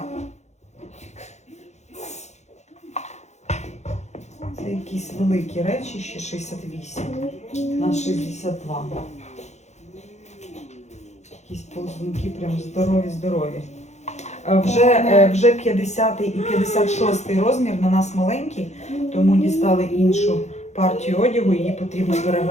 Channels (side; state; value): right; late; 0.33 ms